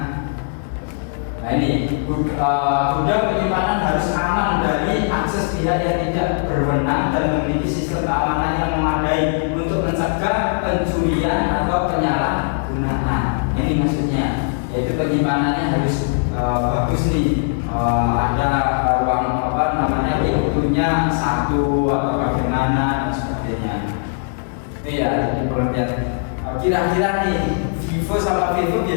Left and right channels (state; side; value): silent; right; digital silence